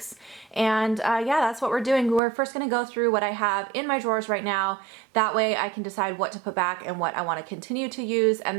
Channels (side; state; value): left; drops out; at 2.2 s